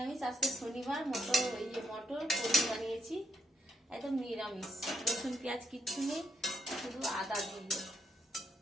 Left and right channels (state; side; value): normal; both; correlation 0.75